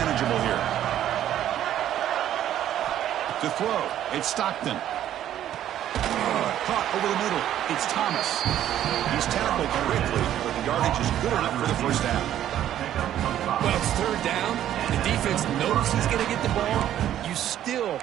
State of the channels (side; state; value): left; quieter; 11.5 dB